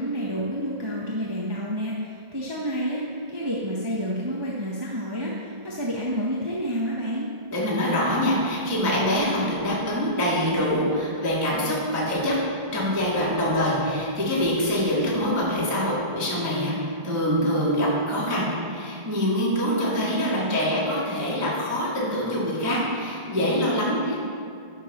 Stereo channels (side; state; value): left; late; 1.4 ms